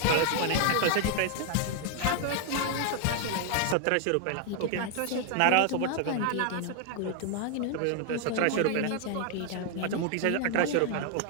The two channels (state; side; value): different; both; correlation 0.00